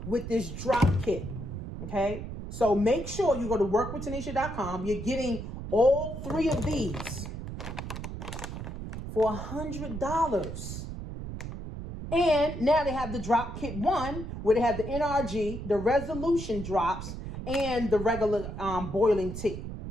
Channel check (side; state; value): right; noise; rumble, 8 dB below the sound